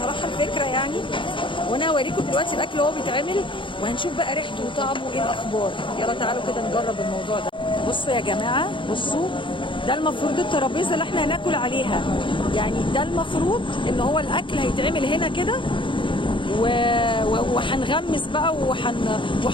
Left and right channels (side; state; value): right; late; 0.24 ms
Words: الفكره يعني، وانا هوريكم دلوقتي الاكل وهو بيتعمل وهنشوف بقى ريحته وطعمه ايه الاخبار. يلا تعالوا كده نجرب الموضوع ده. بصوا يا جماعه، بصوا ده المفروض الترابيزه اللي احنا هناكل عليها، يعني ده المفروض ان هو الاكل هيتعمل هنا كده وهنغمس بقى